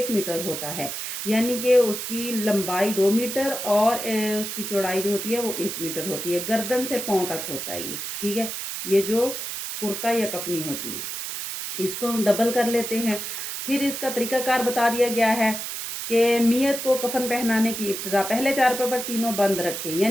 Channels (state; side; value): noise; right; hiss, 5 dB below the sound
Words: मीटर होता है, यानी कि उसकी लंबाई 2 मीटर और उसकी चौड़ाई जो होती है वो 1 मीटर होती है। गर्दन से पाँव तक होता है ये, ठीक है। ये जो कुर्ता या कफनी होती है, इसको हम डबल कर लेते हैं। फिर इसका तरीकाकार बता दिया गया है कि मियत को कफन पहनाने की इब्तिदा पहले चारपाई पर तीनों बंद रखें,